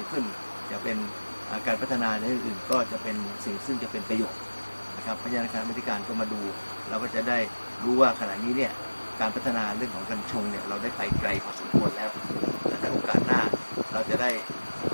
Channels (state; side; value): inverted; both; correlation -1.00